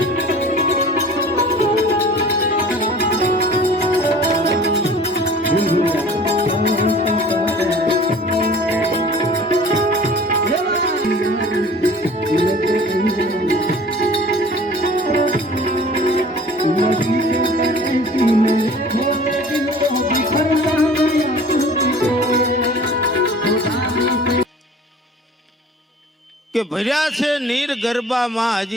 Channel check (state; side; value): normal; both; correlation 0.46